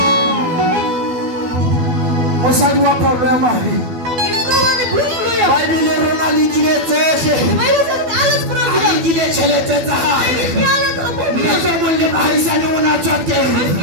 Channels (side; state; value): left; late; 12 ms